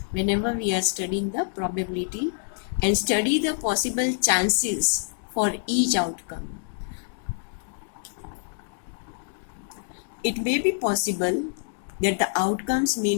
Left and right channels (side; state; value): right; silent; 61 dB below the other